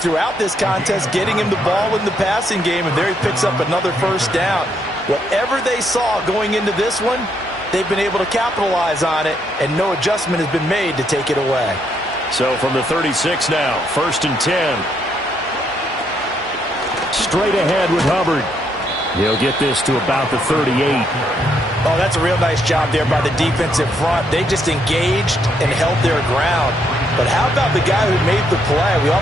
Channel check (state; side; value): normal; both; correlation 0.74